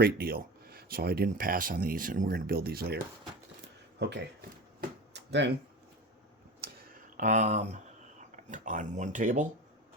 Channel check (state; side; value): normal; both; correlation 0.29